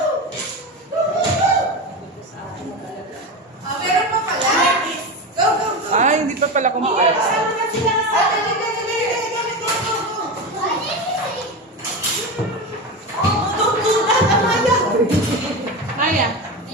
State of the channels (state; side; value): normal; both; correlation 0.21